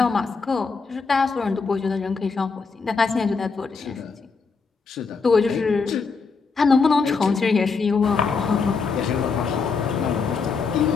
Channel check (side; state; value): right; quieter; 4.8 dB